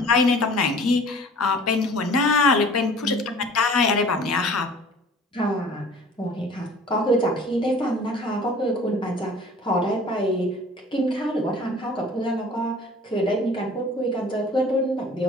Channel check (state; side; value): normal; both; correlation 0.47